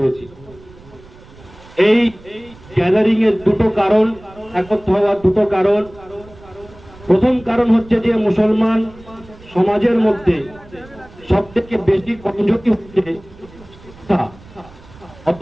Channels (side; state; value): right; noise; rumble, 22 dB below the sound